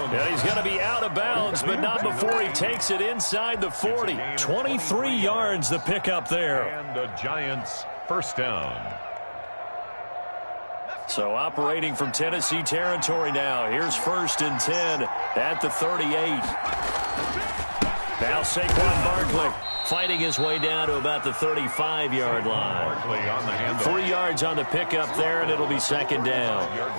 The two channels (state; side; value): inverted; both; correlation -1.00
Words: he's going to be out of bounds, but not before he takes it inside the 40. 23 yards the pickup there. And the Giants first down. So operating from Tennessee territory now. Here's 1st and 10 at the 38. Now Saquon Barkley fighting his way down to about the 35-yard line. 3 yards on the pickup there, and it'll be 2nd down.